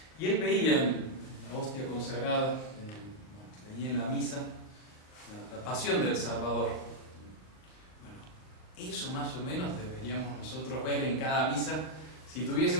Y él veía en la hostia consagrada, veía en la misa la pasión del Salvador. Bueno, eso más o menos deberíamos nosotros ver en cada misa si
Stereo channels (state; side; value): late; right; 38 ms